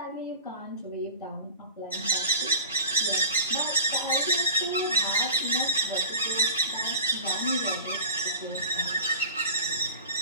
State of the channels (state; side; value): inverted; both; correlation -0.37